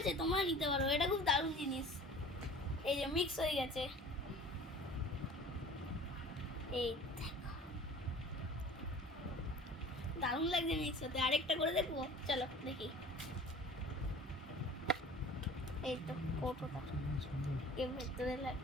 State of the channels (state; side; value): normal; both; correlation 0.44